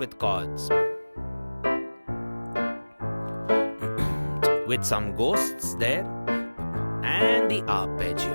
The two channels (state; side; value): inverted; both; correlation -1.00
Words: chords. With some ghosts there. And the